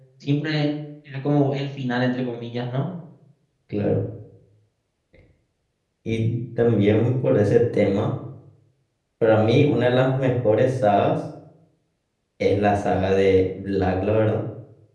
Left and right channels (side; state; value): both; identical; correlation 1.00